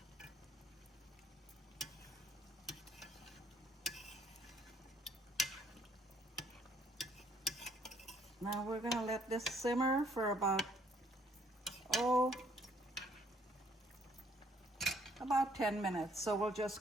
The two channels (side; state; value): both; normal; correlation 0.64